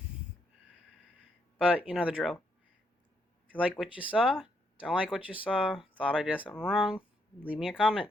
But you know the drill. If you like what you saw, don't like what you saw, thought I did something wrong, leave me a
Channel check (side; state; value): both; normal; correlation 0.75